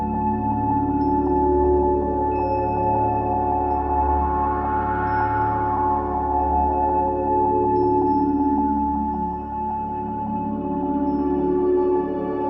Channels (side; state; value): both; identical; correlation 1.00